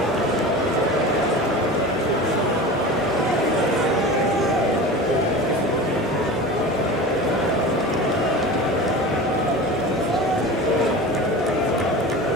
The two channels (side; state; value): both; normal; correlation 0.33